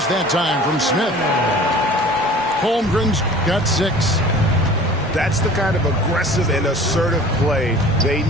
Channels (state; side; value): normal; both; correlation 0.44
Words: that time from Smith. Holmgren's got 6. That's the kind of aggressive and assertive play they